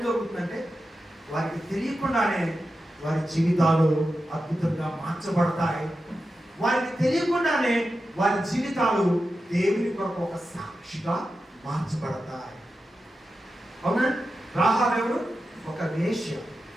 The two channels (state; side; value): normal; both; correlation 0.91